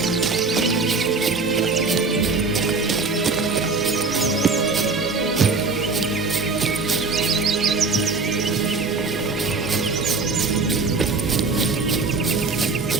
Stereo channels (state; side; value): quieter; left; 4.0 dB